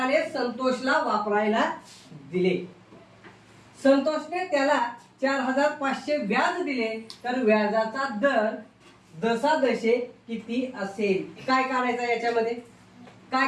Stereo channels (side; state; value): both; identical; correlation 1.00